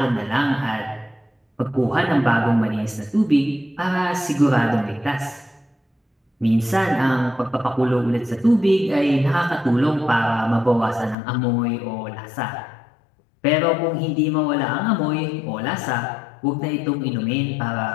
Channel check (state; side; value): drops out; right; at 11.2 s